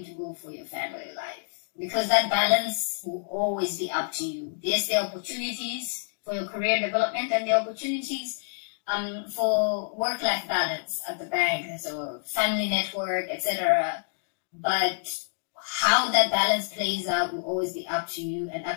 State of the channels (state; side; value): silent; right; digital silence